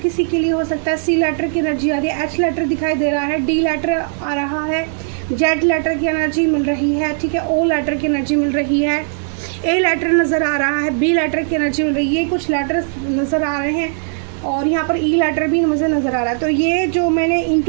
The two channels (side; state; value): left; silent; digital silence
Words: के लिए हो सकता है, सी लेटर की एनर्जी आ रही है, एच लेटर दिखाई दे रहा है, डी लेटर आ रहा है, जेड लेटर की एनर्जी मिल रही है, ठीक है, ओ लेटर की एनर्जी मिल रही है, ए लेटर नज़र आ रहा है, बी लेटर की एनर्जी मिल रही है, ये कुछ लेटर्स नज़र आ रहे हैं और यहाँ पर ई लेटर भी मुझे नज़र आ रहा है। तो ये जो मैंने